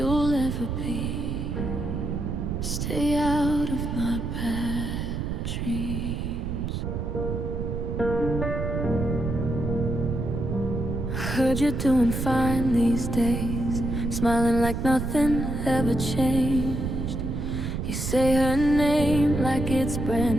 ever be, stay out of my bad dreams. heard you're doing fine these days, smiling like nothing ever changed. You say her name like it's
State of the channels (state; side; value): noise; right; rumble, 3 dB below the sound